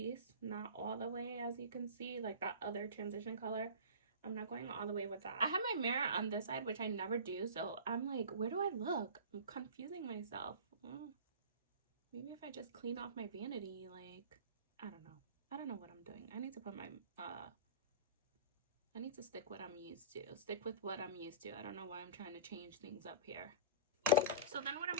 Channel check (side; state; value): both; inverted; correlation -0.33